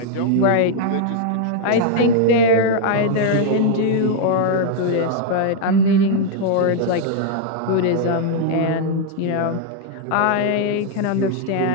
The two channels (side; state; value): both; different; correlation 0.00